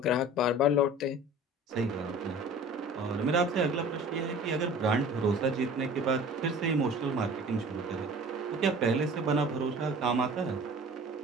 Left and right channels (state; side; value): normal; both; correlation 0.43